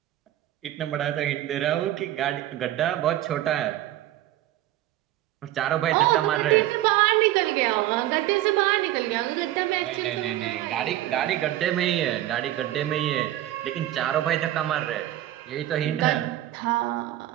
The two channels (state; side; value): quieter; left; 14.2 dB